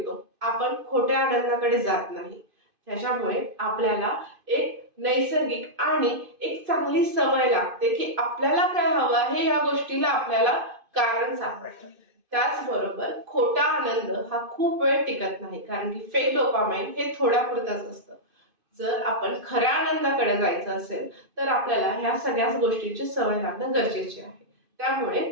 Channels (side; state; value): left; late; 2.5 ms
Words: आपण खोट्या आनंदाकडे जात नाही। त्याच्यामुळे आपल्याला एक नैसर्गिक आणि एक चांगली सवय लागते की आपल्याला काय हवं आहे या गोष्टीला आपल्याला कारण सापडतं। त्याचबरोबर खोटा आनंद हा खूप वेळ टिकत नाही, कारण की फेक डोपामाइन हे थोड्यापुरतच असतं। जर आपण खऱ्या आनंदाकडे जायचं असेल तर आपल्याला ह्या सगळ्याच गोष्टींची सवय लागणं गरजेचे आहे। त्यामुळे